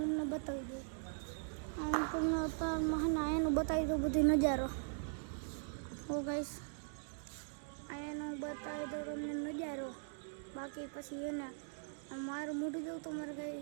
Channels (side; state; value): left; silent; digital silence